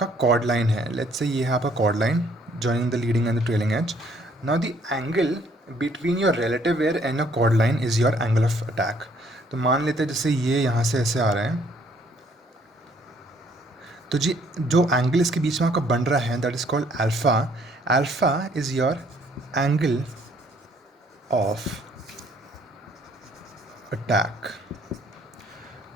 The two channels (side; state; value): both; normal; correlation 0.63